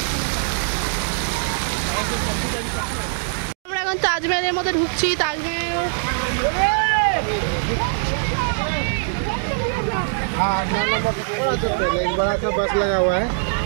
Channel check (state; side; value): silent; left; digital silence